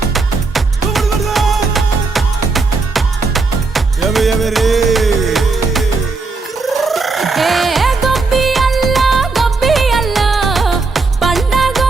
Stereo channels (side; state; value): left; quieter; 4.0 dB